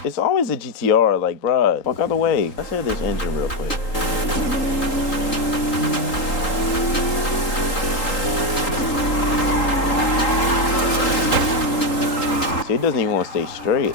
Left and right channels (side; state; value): right; late; 3.8 ms